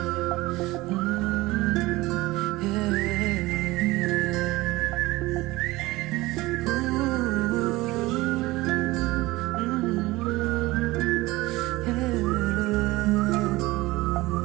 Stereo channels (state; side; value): quieter; left; 19.8 dB